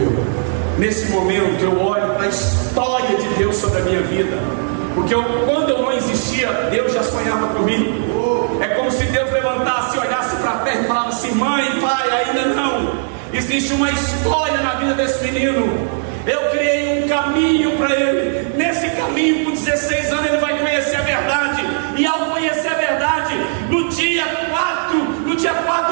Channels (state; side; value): silent; left; digital silence